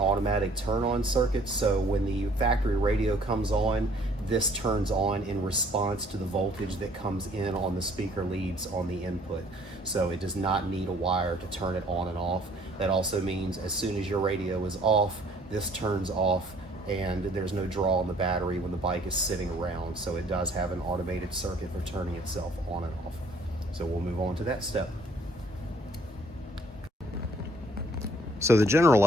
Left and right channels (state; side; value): normal; both; correlation 0.59